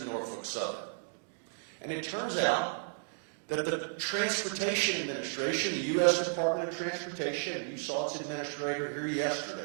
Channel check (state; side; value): silent; left; digital silence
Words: Norfolk Southern? And it turns out that the Transportation Administration, the U.S. Department of Transportation, and you saw its administrator here